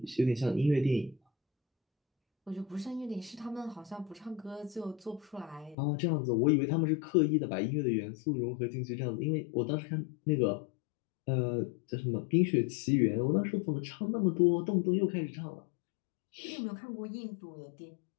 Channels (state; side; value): drops out; right; at 5.8 s